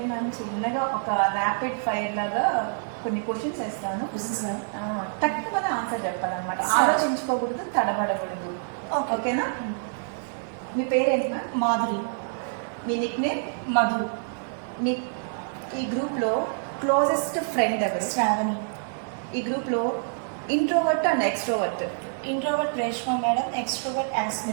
మ్యామ్, చిన్నగా ఒక ర్యాపిడ్ ఫైర్ లాగా కొన్ని క్వశ్చన్స్ వేస్తాను. సార్ తక్కువనే ఆన్సర్ చెప్పాలన్నమాట. సరే. ఆలోచించుకోకూడదు, తడబడకూడదు. ఓకేనా? మీ పేరేంటి మ్యామ్? మాధురి. మీ నిక్ నేమ్? మధు. మీ ఈ గ్రూప్లో క్లోజెస్ట్ ఫ్రెండ్ ఎవరు? శ్రావణి. ఈ గ్రూప్లో introvert and extrovert? Introvert Reshma madam, extrovert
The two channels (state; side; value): silent; left; 57 dB below the other